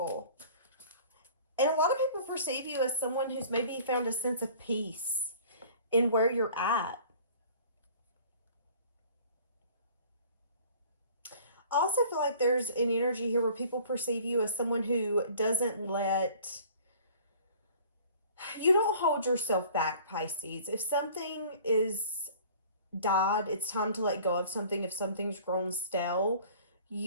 And a lot of people perceive you as someone who's maybe found a sense of peace in where you're at. I also feel like there's an energy here where people perceive you as someone who doesn't let... You don't hold yourself back, Pisces. If something is died, it's time to let go of something. If something's grown stale,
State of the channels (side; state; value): both; inverted; correlation -0.49